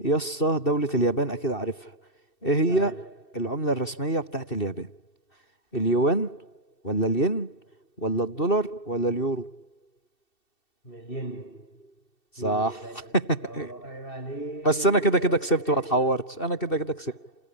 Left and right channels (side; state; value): right; late; 2.7 ms